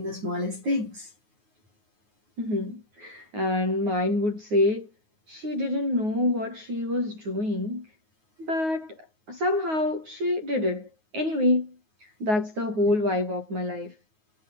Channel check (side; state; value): left; late; 9.5 ms